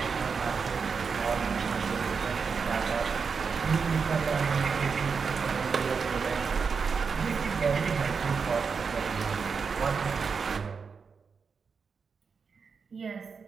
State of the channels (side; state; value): left; quieter; 5.5 dB